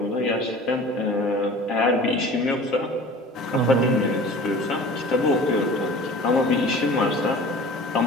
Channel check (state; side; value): normal; both; correlation 0.42